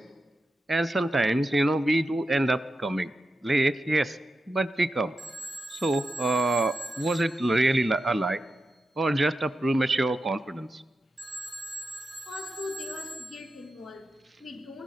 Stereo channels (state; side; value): normal; both; correlation 0.90